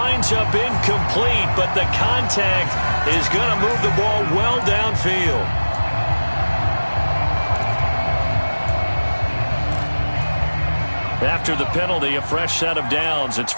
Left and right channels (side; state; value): both; inverted; correlation -1.00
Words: up incomplete. But the contact is going to move the ball well downfield. After the penalty, a fresh set of downs. It's